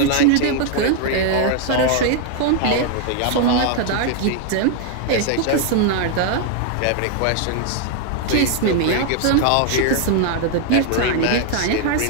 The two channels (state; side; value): different; both; correlation 0.00